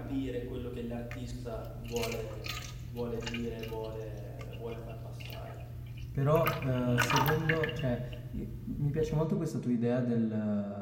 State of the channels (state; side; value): identical; both; correlation 1.00